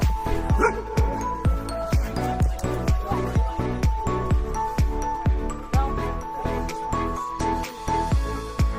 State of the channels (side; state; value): both; identical; correlation 1.00